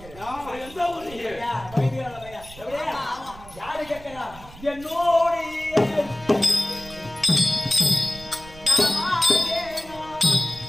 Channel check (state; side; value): noise; right; rumble, 18 dB below the sound